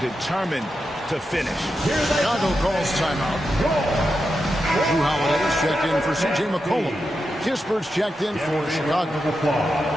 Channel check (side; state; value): both; normal; correlation 0.88